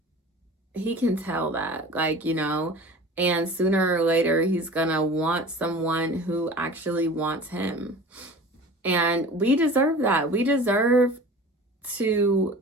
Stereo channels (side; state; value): both; normal; correlation 0.39